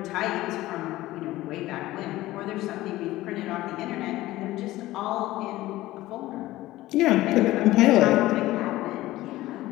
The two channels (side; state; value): right; quieter; 16.8 dB